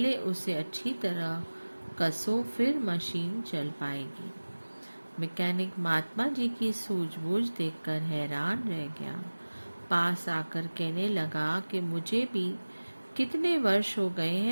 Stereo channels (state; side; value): inverted; both; correlation -1.00